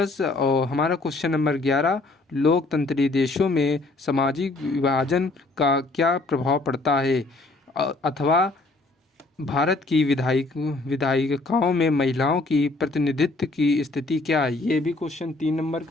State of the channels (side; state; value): right; quieter; 3.2 dB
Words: और हमारा क्वेश्चन नंबर 11, लोकतंत्री देशों में सामाजिक विभाजन का क्या प्रभाव पड़ता है, अथवा भारत की विधायिकाओं में महिलाओं की प्रतिनिधित्व की स्थिति क्या है। ये भी क्वेश्चन 3 नंबर